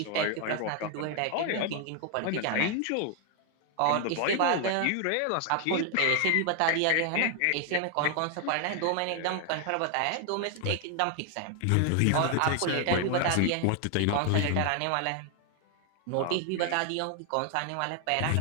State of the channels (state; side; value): different; both; correlation 0.00